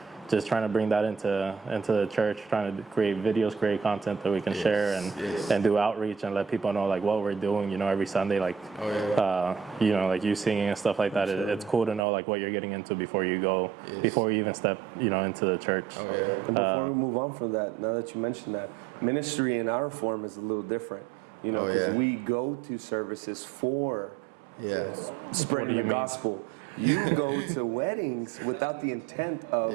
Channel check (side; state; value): left; drops out; at 12.0 s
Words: just trying to bring that into the church, trying to create videos, create content that we can share, and do outreach and let people know like what we're doing. You know, every Sunday, like you know, like you singing and stuff like that. It's cool to know like what you're getting into before you go, before you even step, you know, into the church. And before we move on from that, now that you mentioned that, ministry in our form is a little different. You know, because we go to services for spreading the gospel. You go to weddings without the intent of,